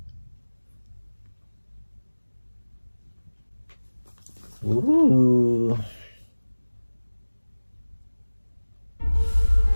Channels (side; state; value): both; inverted; correlation -1.00